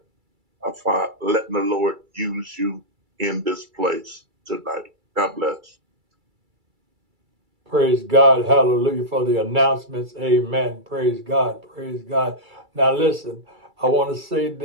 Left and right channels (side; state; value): left; late; 2.3 ms